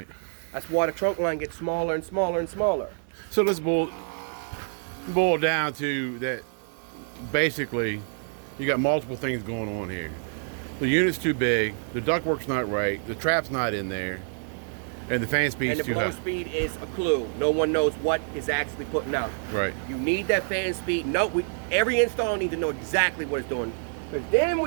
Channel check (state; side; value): silent; left; digital silence